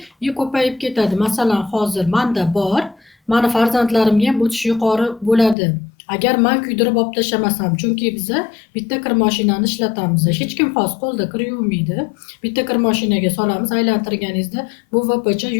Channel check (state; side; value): drops out; right; at 5.6 s